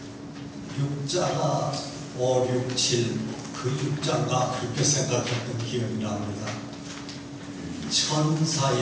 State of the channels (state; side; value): identical; both; correlation 1.00